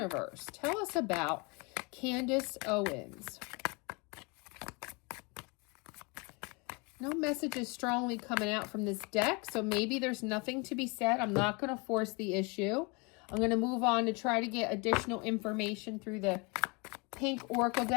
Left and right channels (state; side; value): quieter; right; 29.6 dB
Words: Tell us about Candace Owens. No messages strongly coming out from this deck, so maybe there's nothing to be said. I'm not going to force the issue. I'm going to move on to try to get additional information through the pink oracle